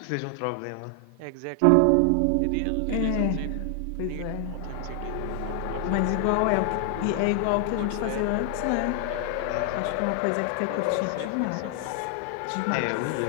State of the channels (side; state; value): both; different; correlation 0.00